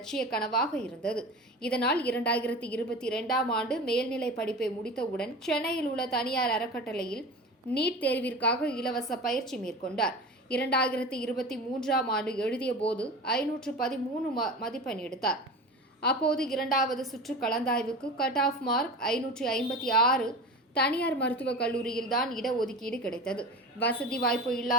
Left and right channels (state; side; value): normal; both; correlation 0.32